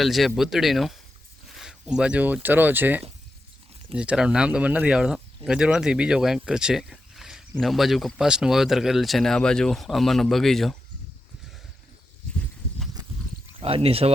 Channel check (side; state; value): both; normal; correlation 0.88